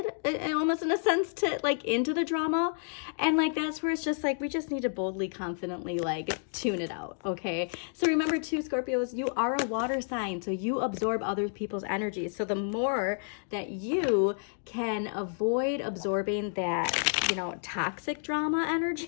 almost in a sense to like into the drama, and like that's where it's just like we just need to boldly, confidently like tune it out, okay? So remember too, Scorpios, you are a water sign, so you absorb other people's energy. So the more that you can avoid absorbing that, you know, toxic drama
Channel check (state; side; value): silent; right; digital silence